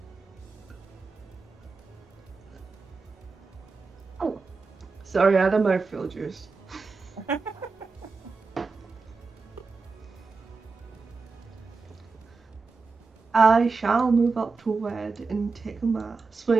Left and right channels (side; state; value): left; quieter; 4.3 dB